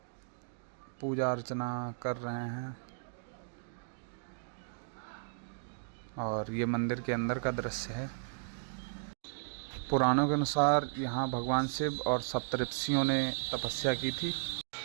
पूजा अर्चना कर रहे हैं और ये मंदिर के अंदर का दृश्य है। पुराणों के अनुसार यहाँ भगवान शिव और सप्तऋषियों ने तपस्या की थी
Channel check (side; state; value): left; silent; digital silence